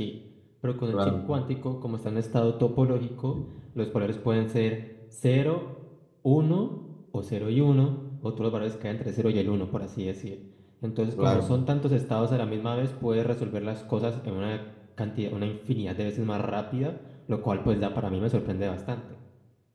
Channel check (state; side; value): identical; both; correlation 1.00